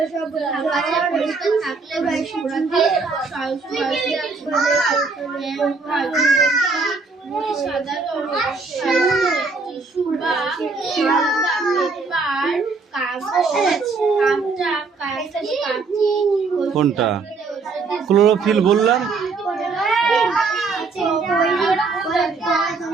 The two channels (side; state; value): left; quieter; 4.3 dB